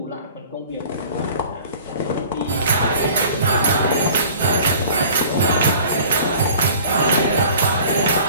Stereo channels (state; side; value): inverted; both; correlation -0.47